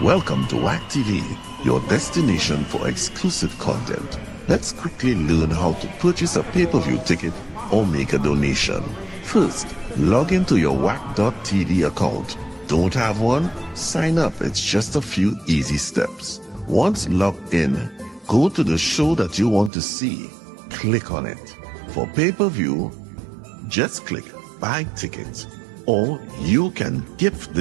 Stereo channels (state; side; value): drops out; left; at 19.7 s